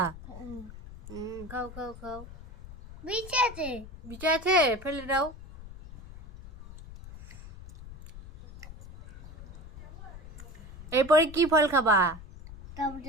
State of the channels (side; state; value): left; noise; rumble, 16 dB below the sound